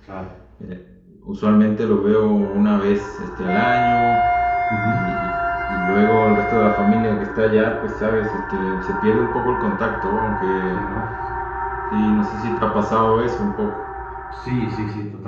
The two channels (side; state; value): both; identical; correlation 1.00